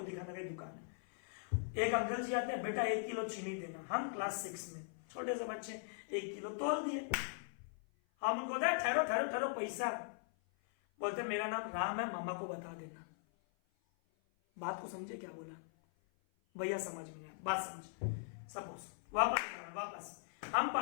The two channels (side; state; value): right; silent; 51 dB below the other